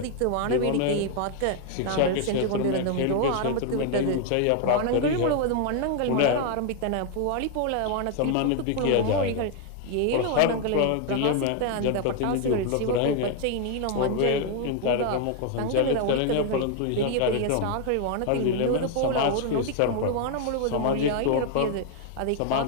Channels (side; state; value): both; different; correlation 0.00